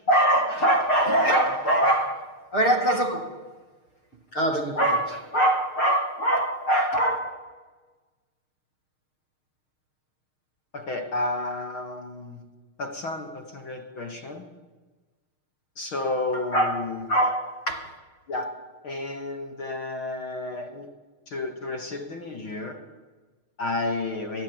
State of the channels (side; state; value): right; late; 6.5 ms